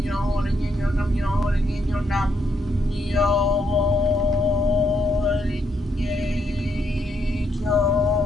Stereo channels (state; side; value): normal; both; correlation 0.76